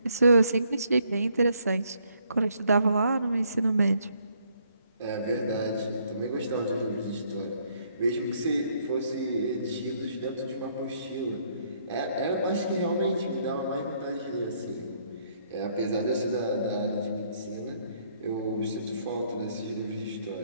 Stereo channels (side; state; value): both; inverted; correlation -0.69